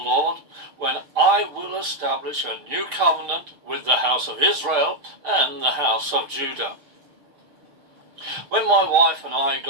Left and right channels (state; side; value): late; left; 6.7 ms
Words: when I will establish a new covenant with the house of Israel and the house of Judah." When my wife and I